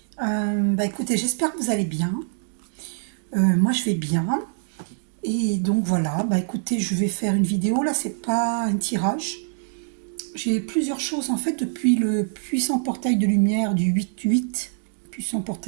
Écoutez, j'espère que vous allez bien. Moi je vais bien. Et donc voilà, écoutez, je vais faire une vidéo. Là, c'est pas un tirage. J'ai plusieurs choses en fait depuis le puissant portail de lumière du 8-8, puissant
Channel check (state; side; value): silent; left; digital silence